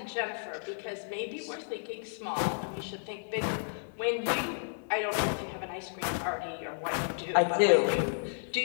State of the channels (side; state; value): right; silent; 56 dB below the other